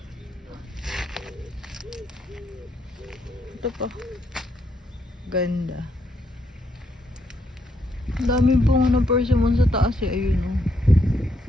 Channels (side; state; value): both; normal; correlation 0.76